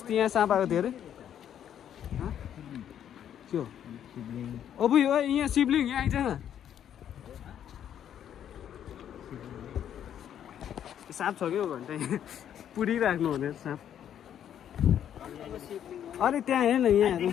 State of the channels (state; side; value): quieter; right; 9.8 dB